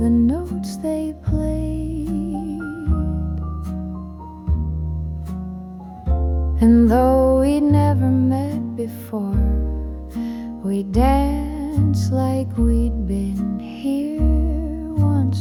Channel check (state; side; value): identical; both; correlation 1.00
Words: notes they played. And though we'd never met before, we danced like we'd been here